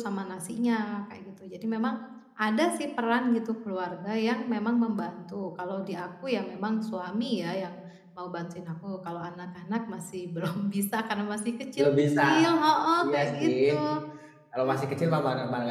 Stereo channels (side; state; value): both; identical; correlation 1.00